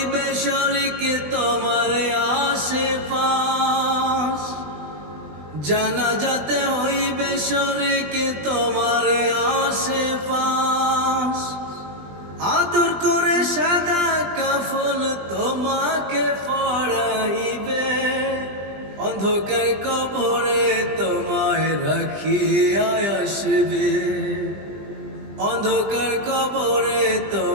শরীক তোমার আশেপাশ, জানাজাতে হইবে শরীক তোমার আশেপাশ। আদর করে সাদা কাফন তোমাকে পরাইবে, অন্ধকার কবরে তোমায় রাখিয়া আসবে, অন্ধকার কবরে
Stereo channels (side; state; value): left; late; 20 ms